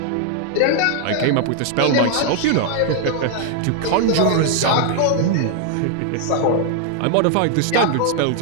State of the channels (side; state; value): both; different; correlation 0.00